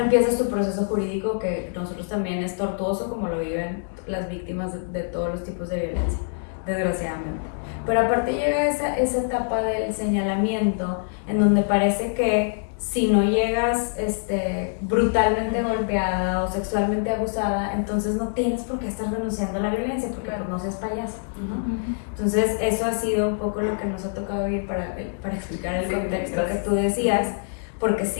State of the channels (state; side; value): silent; right; digital silence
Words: empieza su proceso jurídico que nosotros también es tortuoso como lo viven las víctimas de todos los tipos de violencia, desgraciadamente. Pero aparte llega esa etapa del señalamiento en donde parece que si no llegas brutalmente golpeada o sexualmente abusada, entonces no tienes por qué estar denunciando la violencia porque pues no seas payasa, ¿no? Entonces eso ha sido un poco lo que nos ha tocado vivir para explicar el contexto que tú decías, porque